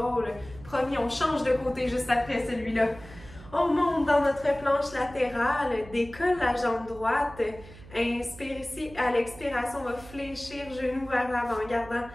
Promis, on change de côté juste après celui-là. On monte dans notre planche latérale, décolle la jambe droite. Inspire ici, à l'expiration, on va fléchir genou vers l'avant, gardant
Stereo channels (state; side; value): noise; right; hum, 19 dB below the sound